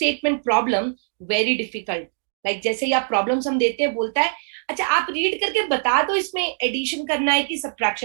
problem very difficult? Like जैसे ही आप प्रॉब्लम्स हम देते हैं, बोलता है अच्छा आप रीड करके बता दो इसमें एडिशन करना है कि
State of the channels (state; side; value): silent; left; digital silence